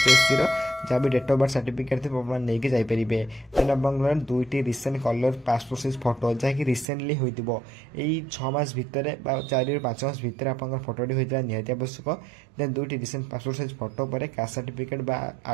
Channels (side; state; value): left; drops out; at 6.9 s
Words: जहाँ भी डेट ऑफ बर्थ सर्टिफिकेट थी नहीं जापरेंगे। देन आप 2टी recent colour passport size photo जहाँकि रिसेंटली होता 6 मास भितर 4 ରୁ 5 मास भितर आप फोटोटी होता निहाती आवश्यक। देन 2टी रिसेंट पासपोर्ट साइज फोटो पर कास्ट सर्टिफिकेट बा